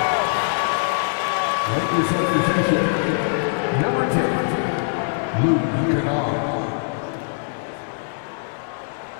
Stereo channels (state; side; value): silent; right; digital silence